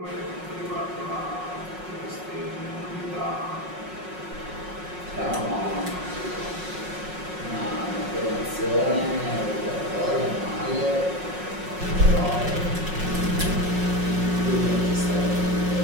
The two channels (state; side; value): late; left; 5.5 ms